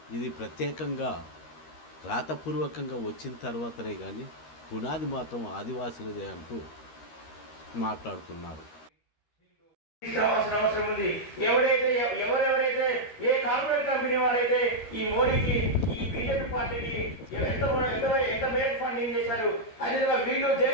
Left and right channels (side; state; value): right; late; 13 ms